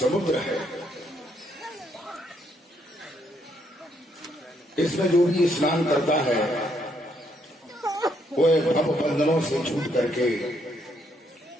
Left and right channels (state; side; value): normal; both; correlation 0.73